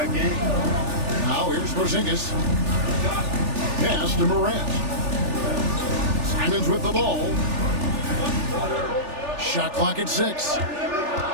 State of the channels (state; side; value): late; left; 3.4 ms